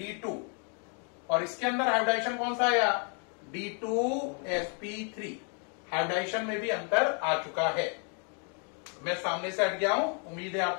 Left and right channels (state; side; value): quieter; right; 40.0 dB